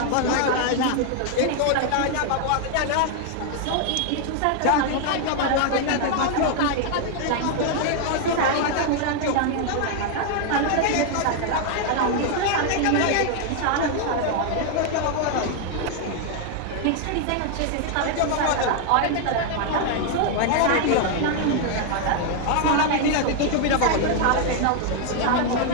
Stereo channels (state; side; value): different; both; correlation 0.00